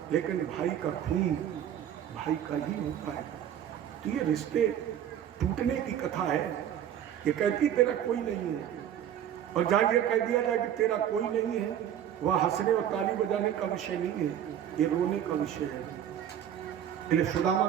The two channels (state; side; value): quieter; left; 10.1 dB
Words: लेकिन भाई का खून भाई का ही होता है। तो ये रिश्ते टूटने की कथा है। ये कहती तेरा कोई नहीं है, और जहाँ ये कह दिया जाए कि तेरा कोई नहीं है, वह हंसने और ताली बजाने का विषय नहीं है, ये रोने का विषय है। इसलिए सुदामा